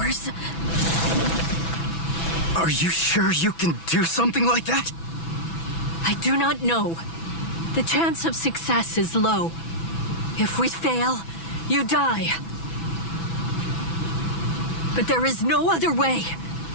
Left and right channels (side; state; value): right; late; 6.0 ms